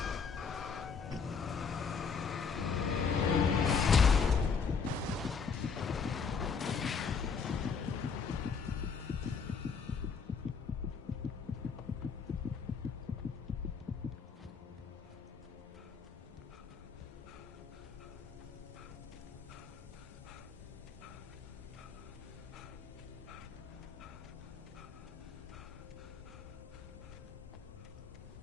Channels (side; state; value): right; quieter; 5.7 dB